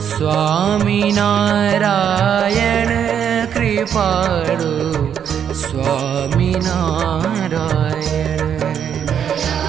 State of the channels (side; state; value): left; quieter; 8.5 dB